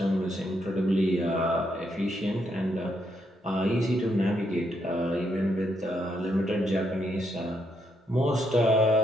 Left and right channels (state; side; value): normal; both; correlation 0.77